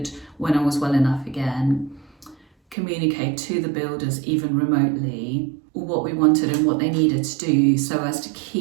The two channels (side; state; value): left; drops out; at 2.8 s